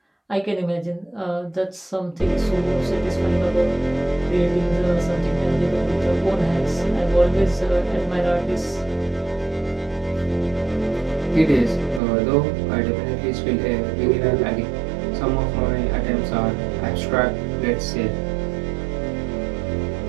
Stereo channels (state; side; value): drops out; left; at 12.0 s